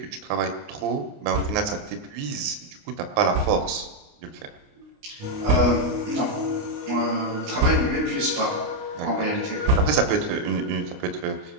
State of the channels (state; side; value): late; left; 29 ms